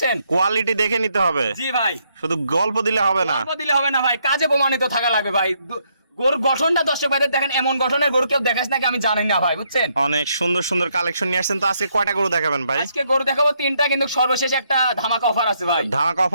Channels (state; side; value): inverted; both; correlation -0.74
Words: কোয়ালিটি দেখে নিতে হবে। জি ভাই, শুধু গল্প দিলে হবে না। গল্প দিলে হবে না ভাই, কাজে প্রমাণিত থাকা লাগবে ভাই। গরুর গঠনটা দর্শক ভাইদের দেখেন, এমন গঠনের গরু কেউ দেখাস নাকি আমি জানি না ভাই, বুঝছেন? অনেক সুন্দর সুন্দর কালেকশন নিয়ে আসছেন। তো আজকে কয়টা গরু দেখাবেন ভাই? আজকে গরু দেখাবো তিনটা, কিন্তু সর্বশেষ একটা ধামাকা অফার আছে ভাই। ধামাকা